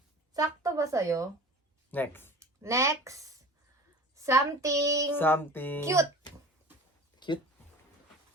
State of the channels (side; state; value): both; normal; correlation 0.40